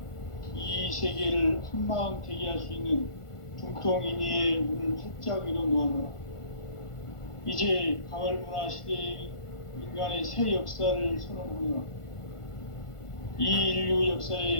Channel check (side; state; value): right; late; 1.5 ms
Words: 이 세계를 한마음 되게 할 수 있는 중통인의의 문을 활짝 열어놓았노라. 이제 가을문화 시대의 인간의 새 역사를 선언하노라. 이 인류